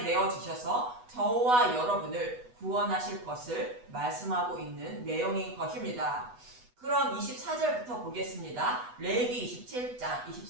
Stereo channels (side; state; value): left; late; 8.1 ms